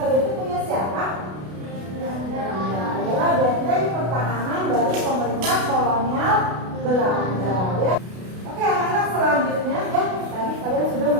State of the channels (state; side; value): late; left; 32 ms